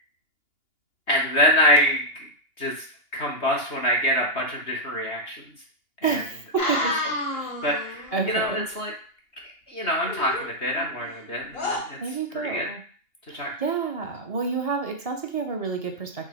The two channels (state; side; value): late; right; 2.8 ms